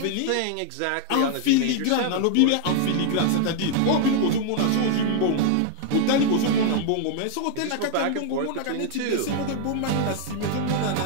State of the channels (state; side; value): different; both; correlation 0.00